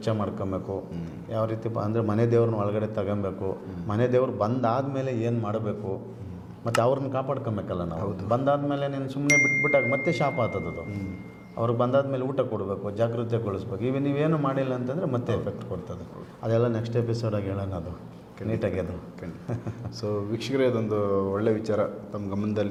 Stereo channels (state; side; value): identical; both; correlation 1.00